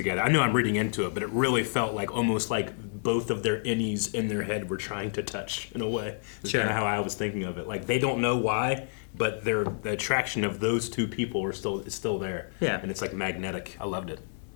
I know I'm reading into it, but it really felt like almost like both of their innies in their head were trying to touch in a way. It's Sure. kind of how I was thinking of it. Like they don't know why, but the attraction of those two people is still there. Yeah. And it's like magnetic. I loved it.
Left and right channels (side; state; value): right; silent; digital silence